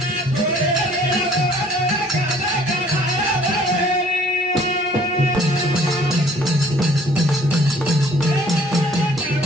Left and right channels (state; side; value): normal; both; correlation 0.57